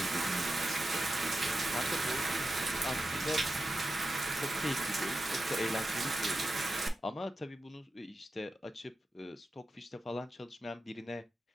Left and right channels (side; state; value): both; normal; correlation 0.91